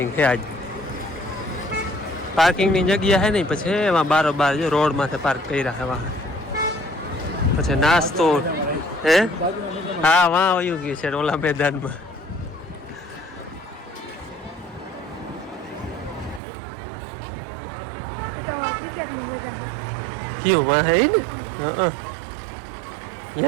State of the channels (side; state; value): left; drops out; at 16.4 s